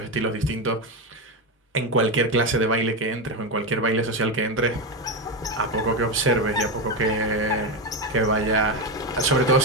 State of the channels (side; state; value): both; normal; correlation 0.12